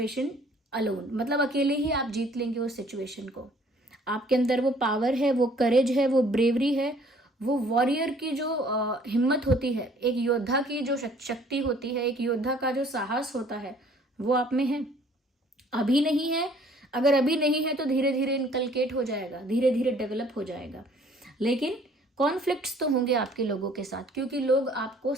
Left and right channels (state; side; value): normal; both; correlation 0.57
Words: alone, मतलब अकेले ही आप जीत लेंगे उस सिचुएशन को। आपके अंदर वो पावर है, वो करेज है, वो ब्रेवरी है, वो वॉरियर की जो हिम्मत होती है, एक योद्धा की जो शक्ति होती है, एक योद्धा का जो साहस होता है, वो आप में है। अभी नहीं है, अगर अभी नहीं है तो धीरे धीरे इनकलकेट हो जाएगा, धीरे धीरे डेवलप हो जाएगा। लेकिन कॉन्फ्लिक्ट्स तो होंगे आपके लोगों के साथ, क्योंकि लोग आपको